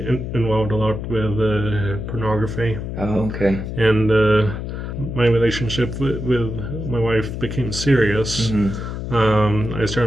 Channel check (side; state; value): left; noise; hum, 6 dB below the sound